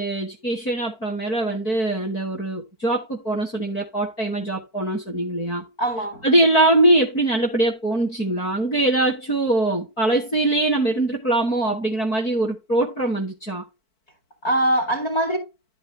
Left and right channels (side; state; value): right; late; 4.5 ms